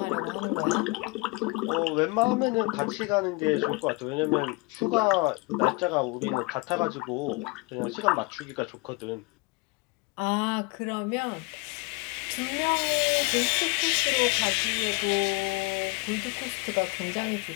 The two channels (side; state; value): right; quieter; 26.3 dB